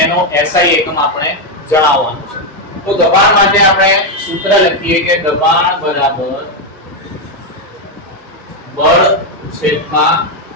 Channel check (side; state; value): both; normal; correlation 0.04